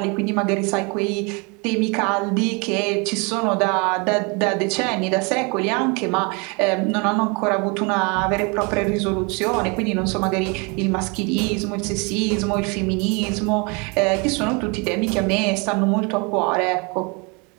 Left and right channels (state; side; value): quieter; left; 30.8 dB